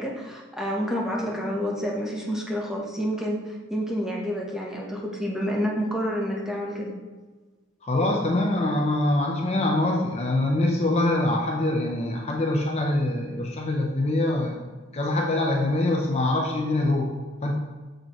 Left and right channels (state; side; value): normal; both; correlation 0.65